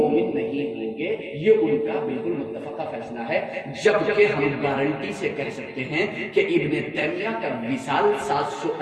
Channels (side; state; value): both; identical; correlation 1.00